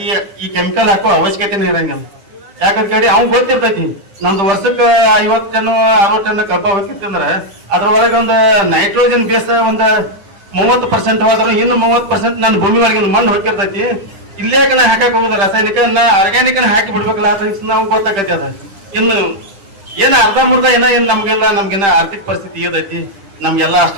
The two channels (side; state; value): left; late; 10 ms